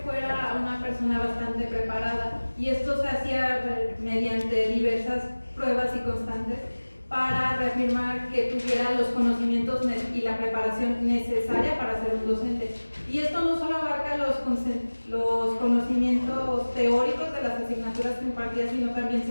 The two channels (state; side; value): inverted; both; correlation -1.00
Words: fuera una persona bastante preparada y esto se hacía mediante diversas pruebas y constantes para reafirmar que tuviera los conocimientos y la preparación necesaria para ser un docente. Y esto no solo abarca los conocimientos teóricos de las asignaturas que impartía, sino también